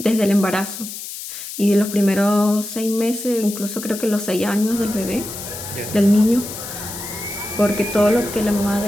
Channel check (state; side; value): noise; left; hiss, 10 dB below the sound